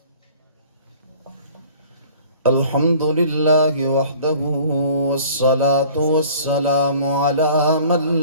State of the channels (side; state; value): both; inverted; correlation -0.50